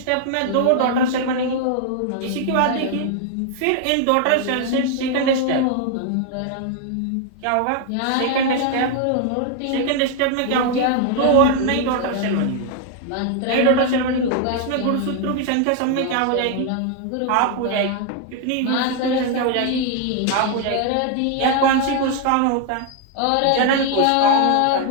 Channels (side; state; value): both; different; correlation 0.00